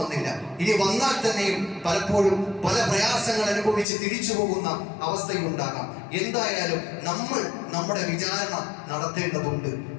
ഇനി വന്നാൽ തന്നെയും പലപ്പോഴും പല പ്രയാസങ്ങൾ അനുഭവിച്ച് തിരിച്ചു പോകുന്ന അവസ്ഥയുണ്ടാകാം. എന്തായാലും നമ്മൾ നമ്മുടെ വിചാരണ നടത്തേണ്ടതുണ്ട്.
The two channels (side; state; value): right; drops out; at 3.9 s